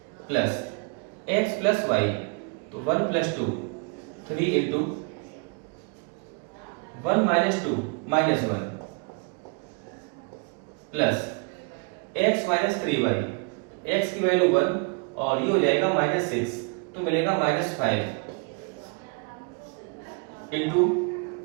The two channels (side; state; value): left; quieter; 34.8 dB